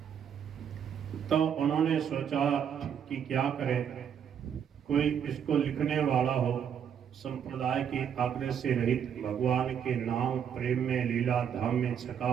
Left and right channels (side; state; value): left; quieter; 8.2 dB